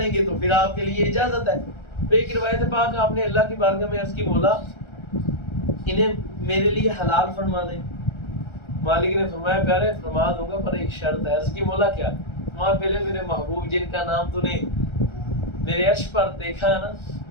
گے تو پھر آپ کے لیے اجازت ہے۔ ایک روایت پاک آپ نے اللہ کی بارگاہ میں عرض کی مولا انہیں میرے لیے حلال فرما دیں۔ مالک نے فرمایا پیارے فرما دوں گا پر ایک شرط ہے۔ عرض کی مولا کیا؟ فرمایا پہلے میرے محبوب جن کا نام تو نے میرے عرش پر دیکھا ہے نا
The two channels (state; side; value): late; right; 1.3 ms